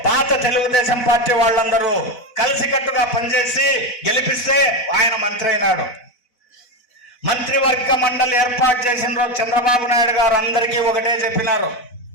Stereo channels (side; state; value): right; late; 4.0 ms